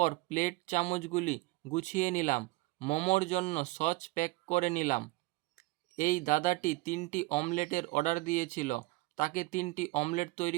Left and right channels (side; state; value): left; quieter; 22.0 dB